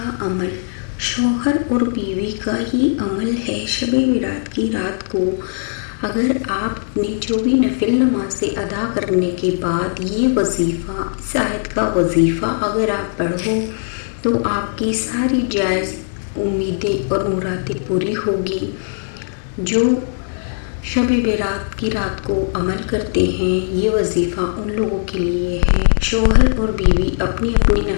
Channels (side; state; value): right; silent; digital silence